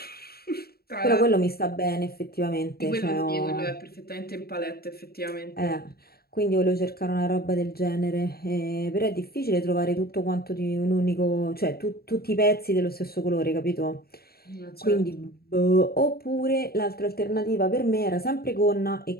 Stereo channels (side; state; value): right; late; 0.45 ms